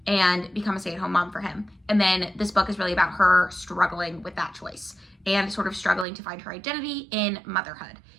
and become a stay-at-home mom for him. And then this book is really about her struggling with that choice and sort of struggling to find her identity in motherhood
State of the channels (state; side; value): drops out; left; at 6.1 s